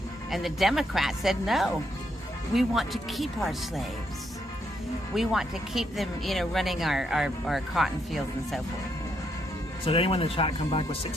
And the Democrats said, no, we want to keep our slaves. We want to keep them, you know, running our cotton fields and so forth. So did anyone in the chat come back with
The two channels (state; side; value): normal; both; correlation 0.76